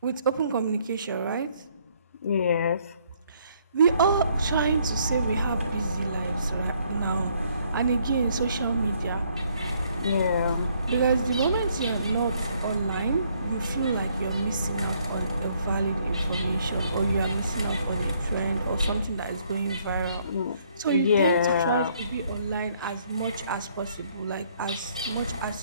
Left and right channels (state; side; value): inverted; both; correlation -0.67